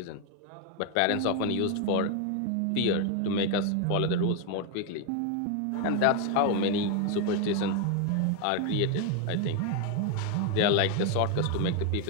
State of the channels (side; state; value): both; different; correlation 0.01